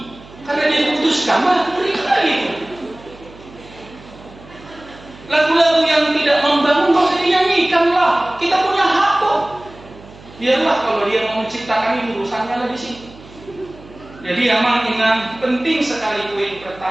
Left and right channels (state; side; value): noise; right; hum, 21 dB below the sound